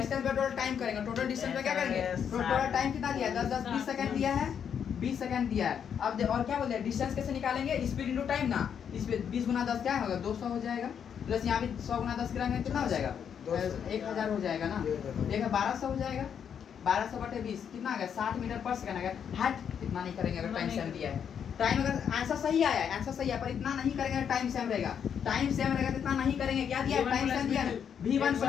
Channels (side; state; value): right; quieter; 7.9 dB